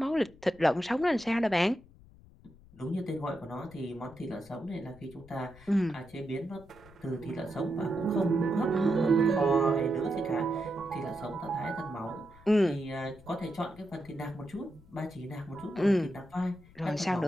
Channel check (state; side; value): noise; left; rumble, 23 dB below the sound